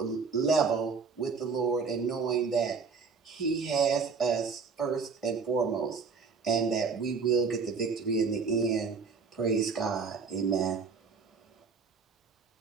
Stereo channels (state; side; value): quieter; left; 5.1 dB